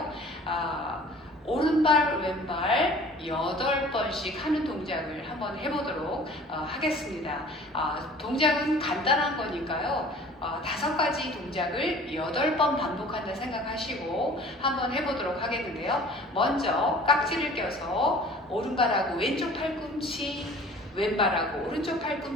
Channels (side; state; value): both; normal; correlation 0.47